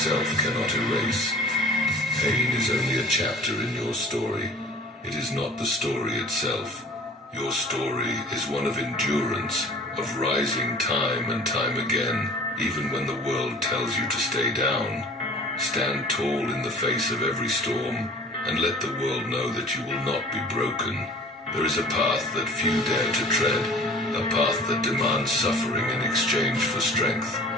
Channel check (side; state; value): both; normal; correlation 0.45